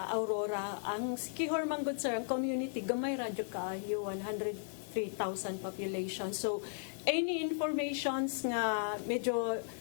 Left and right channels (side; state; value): right; silent; digital silence